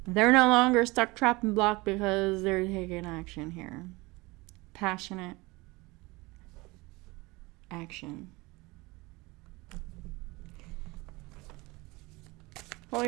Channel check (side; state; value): left; quieter; 23.2 dB